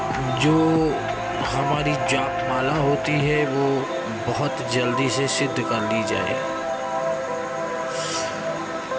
जो हमारी जाप माला होती है वो बहुत जल्दी से सिद्ध कर ली जाए।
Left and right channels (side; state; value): both; identical; correlation 1.00